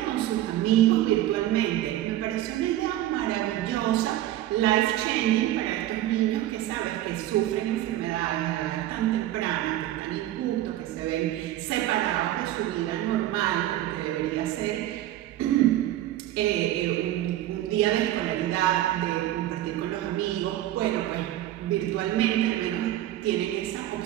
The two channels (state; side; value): quieter; left; 13.9 dB